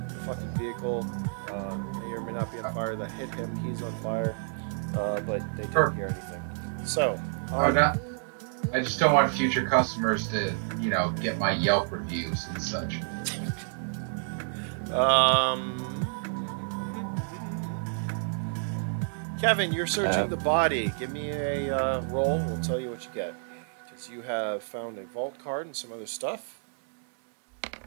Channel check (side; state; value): left; silent; digital silence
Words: The fucking vehicle may or may not be on fire. That hit him. He's on fire. But they didn't hear anything. So. I just don't want future customers to, you know, get my Yelp reviews and such. Kevin, you're searching the body. Give me a roll. We'll tell you what you get. Because you have found a vault card and some other stuff.